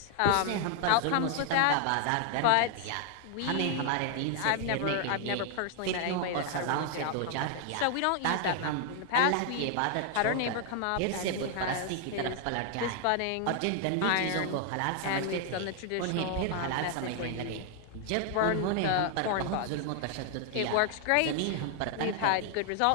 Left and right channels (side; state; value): both; different; correlation 0.00